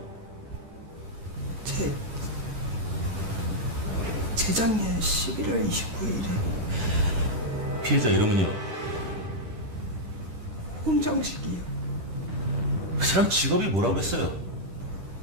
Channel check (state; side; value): late; left; 10 ms